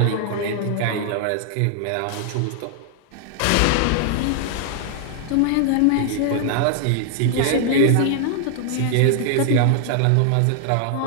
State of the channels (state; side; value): different; both; correlation 0.00